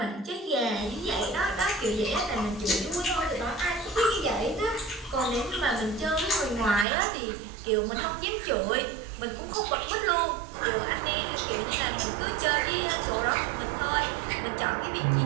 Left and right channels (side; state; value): left; drops out; at 6.9 s